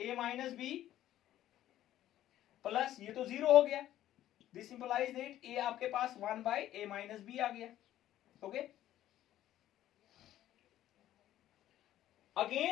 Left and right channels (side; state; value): right; quieter; 12.9 dB